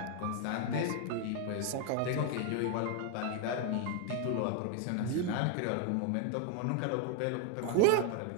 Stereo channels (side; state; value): both; different; correlation 0.01